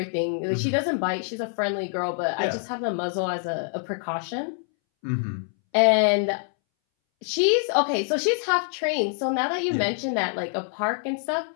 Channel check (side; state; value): right; silent; 61 dB below the other